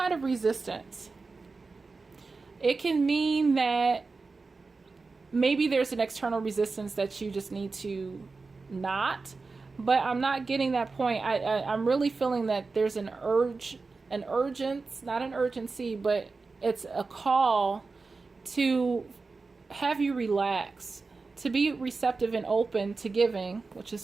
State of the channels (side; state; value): left; quieter; 4.1 dB